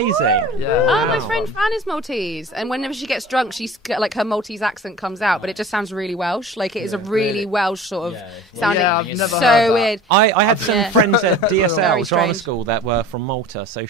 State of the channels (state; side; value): normal; both; correlation 0.40